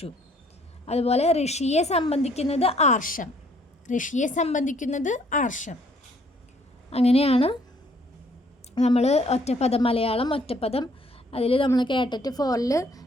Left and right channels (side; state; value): both; normal; correlation 0.63